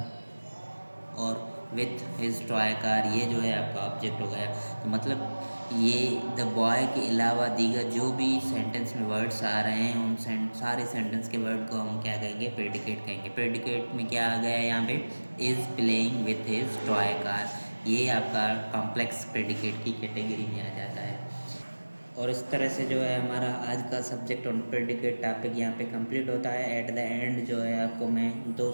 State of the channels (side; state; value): both; inverted; correlation -1.00